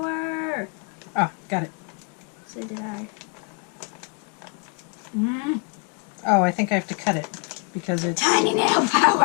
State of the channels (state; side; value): quieter; right; 38.1 dB